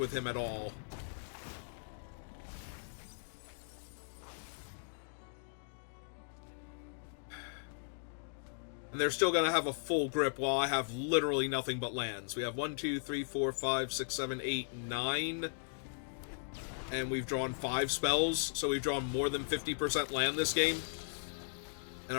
him at all. And they're still going to have a full grip while I have literally nothing but lands. We have 1, 2, 3, 4, 5, 6, 7, 8, 9. And we've drawn 5 spells, so we've drawn more than 50% land this game. And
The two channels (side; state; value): right; silent; digital silence